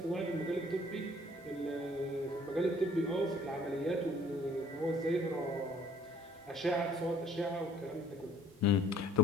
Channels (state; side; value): normal; both; correlation 0.58